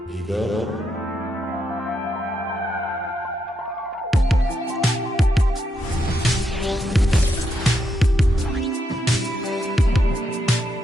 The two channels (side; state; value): both; normal; correlation 0.80